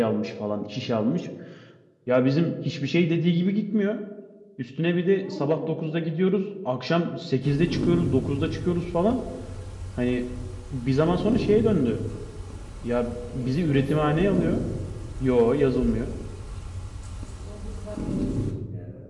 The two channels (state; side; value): identical; both; correlation 1.00